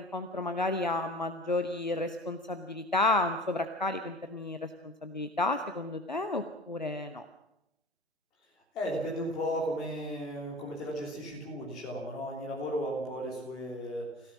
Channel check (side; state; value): both; normal; correlation 0.39